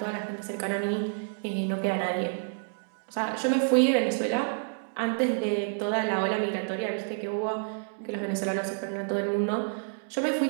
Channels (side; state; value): left; silent; digital silence